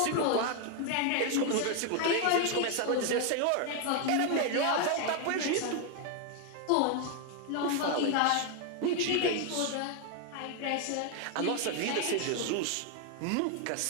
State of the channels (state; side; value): different; both; correlation 0.01